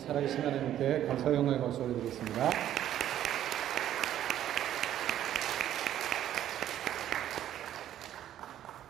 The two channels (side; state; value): left; quieter; 11.6 dB